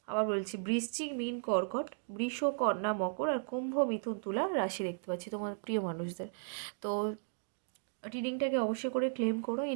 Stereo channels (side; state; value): left; silent; digital silence